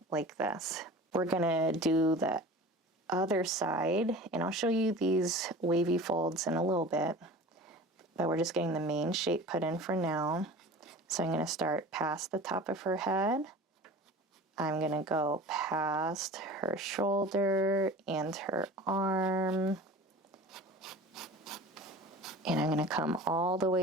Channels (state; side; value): normal; both; correlation 0.38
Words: like this. We're going to do the other side, and I'll show you these wavy folds in a little bit, but we're just getting the main shape put in for now. So I'm going to start past the top of her head. I'm going to go past her shoulder and her arm. And I'm going to come all the